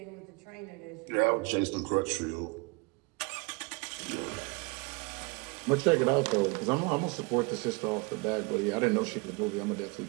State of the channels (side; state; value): left; quieter; 28.6 dB